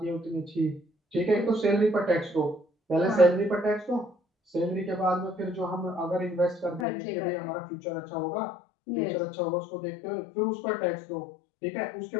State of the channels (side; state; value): right; drops out; at 6.9 s